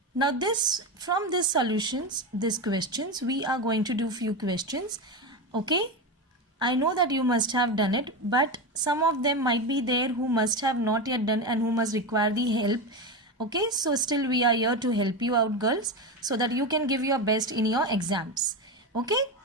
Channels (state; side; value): normal; both; correlation 0.17